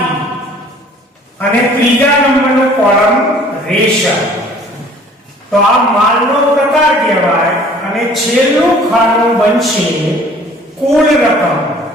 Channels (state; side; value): normal; both; correlation 0.52